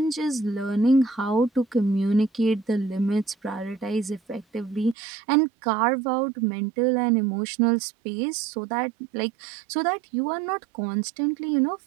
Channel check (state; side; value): drops out; left; at 5.0 s